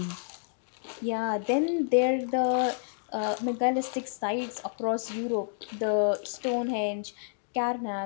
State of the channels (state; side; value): silent; right; digital silence